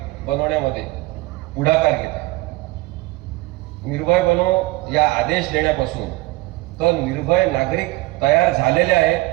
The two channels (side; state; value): left; quieter; 20.8 dB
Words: बनवण्यामध्ये पुढाकार घेत आहे. निर्भय बनो या आदेश देण्यापासून तर निर्भय नागरिक तयार झालेले